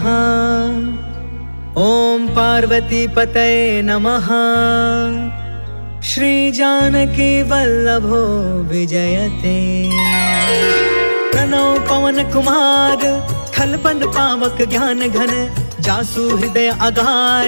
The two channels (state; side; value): inverted; both; correlation -1.00